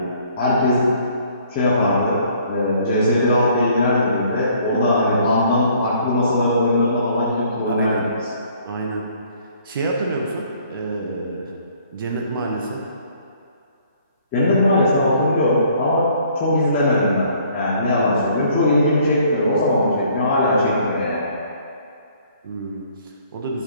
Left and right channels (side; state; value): both; inverted; correlation -0.60